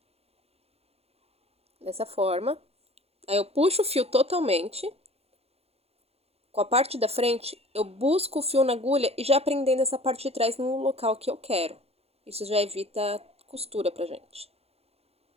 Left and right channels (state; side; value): late; left; 0.29 ms